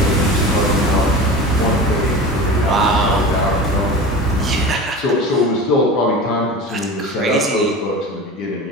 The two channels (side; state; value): both; normal; correlation 0.33